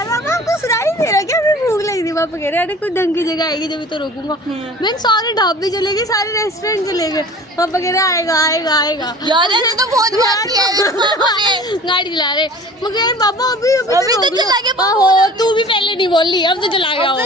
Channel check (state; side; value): normal; both; correlation 0.44